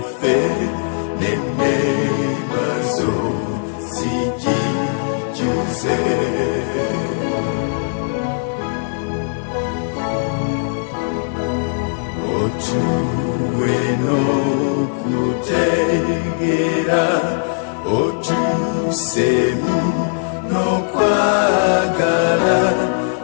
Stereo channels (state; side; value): silent; right; digital silence